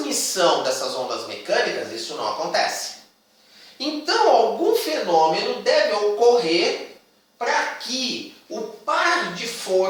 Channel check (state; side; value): identical; both; correlation 1.00